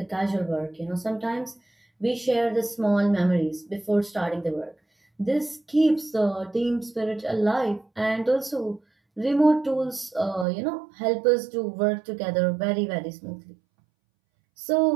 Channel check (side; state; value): left; drops out; at 10.5 s